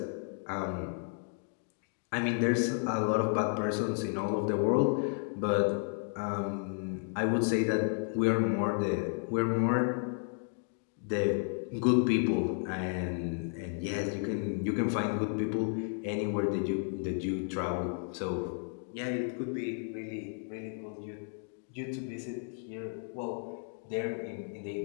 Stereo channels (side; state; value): right; silent; 56 dB below the other